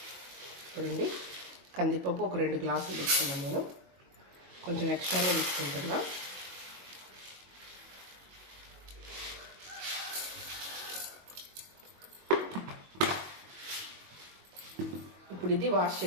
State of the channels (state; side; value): late; left; 22 ms